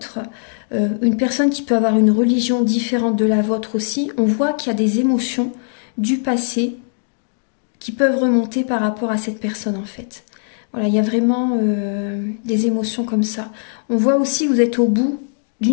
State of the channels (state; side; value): silent; right; digital silence